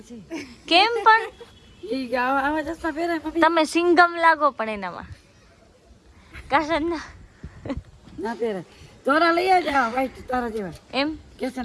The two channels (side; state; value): both; identical; correlation 1.00